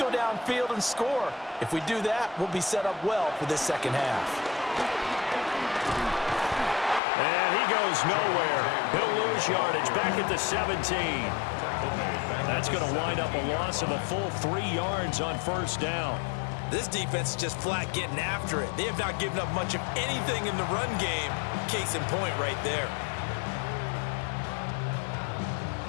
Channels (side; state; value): right; drops out; at 7.0 s